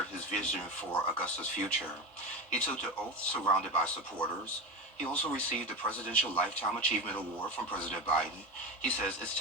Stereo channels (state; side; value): normal; both; correlation 0.21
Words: his vision for Augusta's future. He took the oath surrounded by supporters. He also received the Presidential Lifetime Achievement Award from President Biden. He says it's